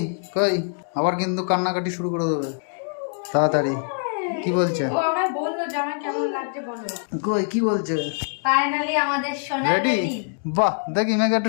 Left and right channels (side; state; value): right; silent; 56 dB below the other